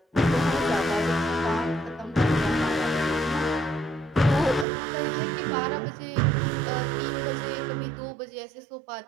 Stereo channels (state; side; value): drops out; left; at 4.7 s